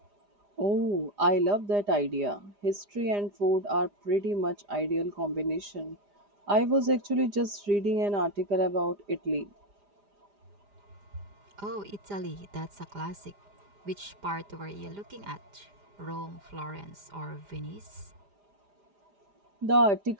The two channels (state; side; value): late; left; 4.9 ms